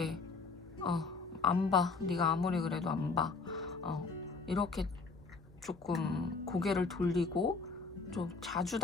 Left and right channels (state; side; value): quieter; right; 4.3 dB